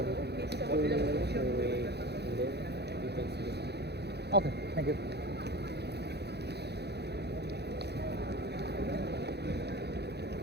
away, and then you can see this. Okay, thank you.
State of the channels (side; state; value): left; late; 0.48 ms